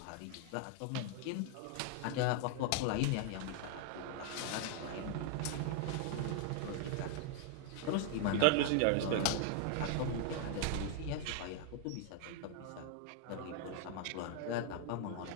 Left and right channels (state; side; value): different; both; correlation 0.00